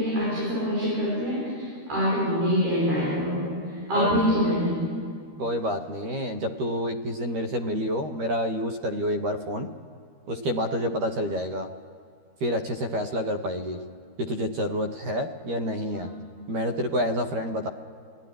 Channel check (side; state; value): left; late; 13 ms